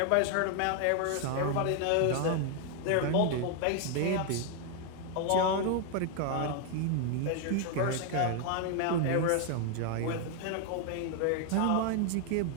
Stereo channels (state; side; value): different; both; correlation 0.00